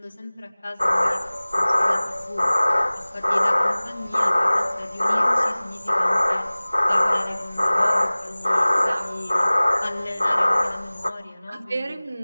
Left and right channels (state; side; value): inverted; both; correlation -1.00